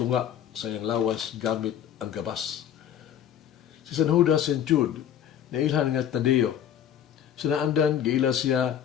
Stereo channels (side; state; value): right; quieter; 9.7 dB